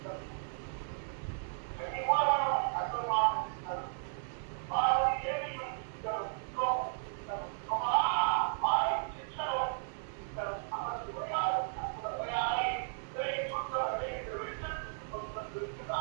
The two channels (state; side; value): silent; left; 54 dB below the other